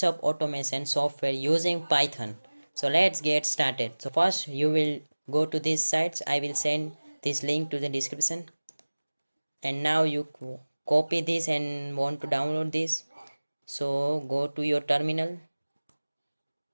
automation software using Python. So let's get started. So first you will go to these sites. I will send this link to the description. And now you copy this and want to download this. So go to your terminal.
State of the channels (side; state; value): both; inverted; correlation -1.00